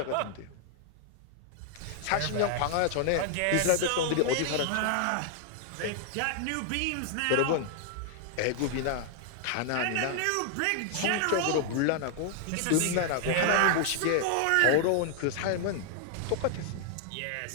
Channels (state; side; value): different; both; correlation 0.00